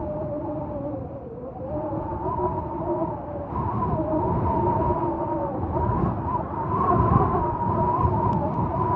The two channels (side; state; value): both; identical; correlation 1.00